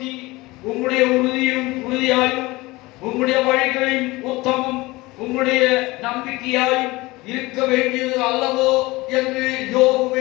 உம்முடைய உறுதியாயும் உம்முடைய வழிகளின் உத்தமம் உம்முடைய நம்பிக்கையாயும் இருக்க வேண்டியது அல்லவோ என்று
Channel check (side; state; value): right; quieter; 21.3 dB